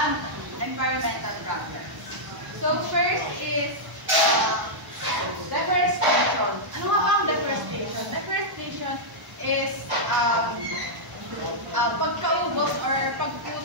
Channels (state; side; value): late; left; 1.0 ms